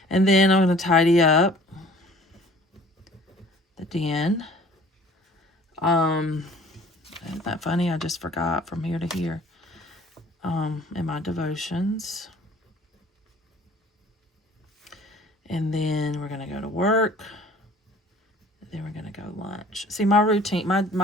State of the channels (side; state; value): both; normal; correlation 0.51